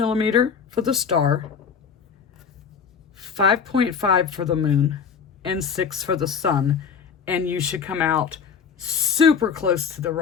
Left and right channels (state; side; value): quieter; right; 6.6 dB